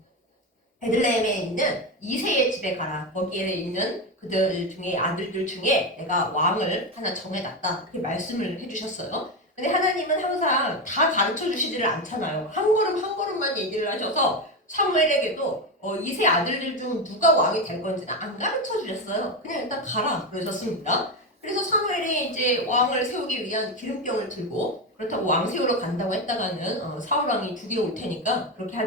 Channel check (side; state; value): both; normal; correlation 0.14